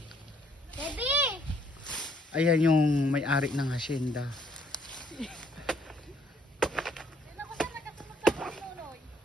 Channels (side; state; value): both; normal; correlation 0.67